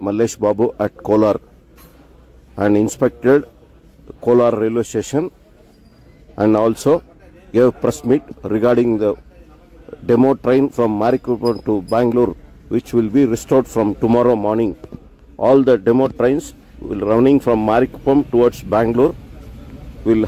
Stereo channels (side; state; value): both; identical; correlation 1.00